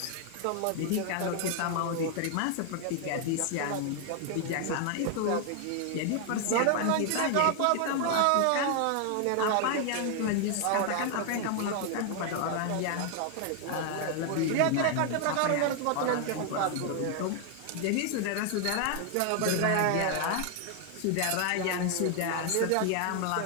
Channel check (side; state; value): both; different; correlation 0.00